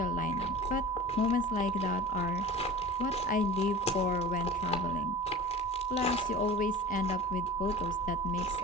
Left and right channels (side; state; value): both; normal; correlation 0.37